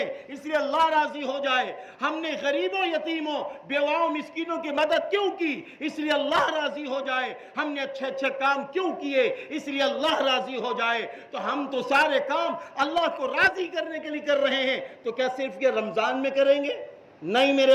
اس لیے اللہ راضی ہو جائے۔ ہم نے غریبوں، یتیموں، بیواؤں، مسکینوں کی مدد کیوں کی؟ اس لیے اللہ راضی ہو جائے۔ ہم نے اچھے اچھے کام کیوں کیے؟ اس لیے اللہ راضی ہو جائے۔ تو ہم تو سارے کام اللہ کو راضی کرنے کے لیے کر رہے ہیں، تو کیا صرف یہ رمضان میں کریں گے؟ نہیں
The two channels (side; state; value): both; identical; correlation 1.00